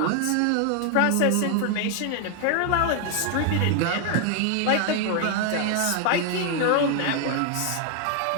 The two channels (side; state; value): both; different; correlation 0.01